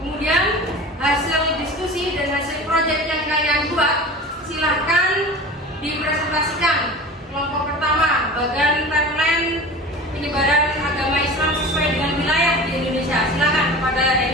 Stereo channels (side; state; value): both; normal; correlation 0.36